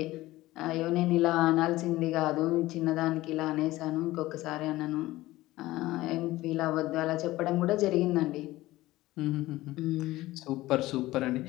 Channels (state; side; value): quieter; right; 17.5 dB